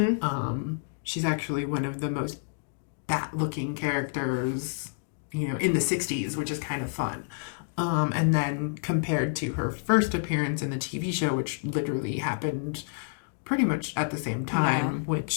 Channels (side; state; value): right; silent; digital silence